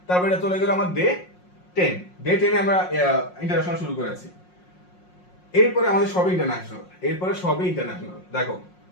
তারপরে চলে গেল আমার ডে 10 আমরা ইন্টারন্যাশনাল শুরু করেছি। এরপরে আমাদের সবই ইন্টারন্যাশনাল। দেখো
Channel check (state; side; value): late; right; 5.5 ms